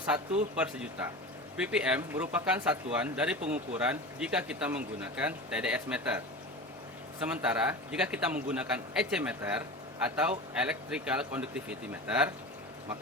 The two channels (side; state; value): both; normal; correlation 0.31